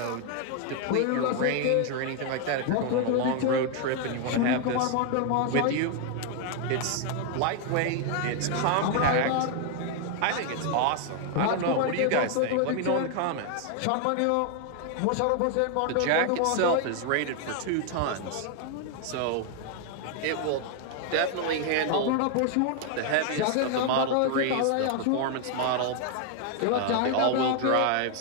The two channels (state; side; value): different; both; correlation 0.00